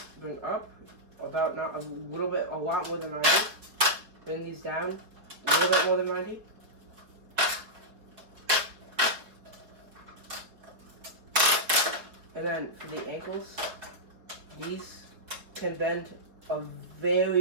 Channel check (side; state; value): left; late; 4.8 ms